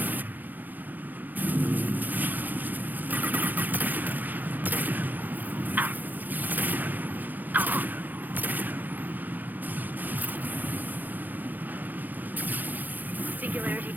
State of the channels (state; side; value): late; left; 0.085 ms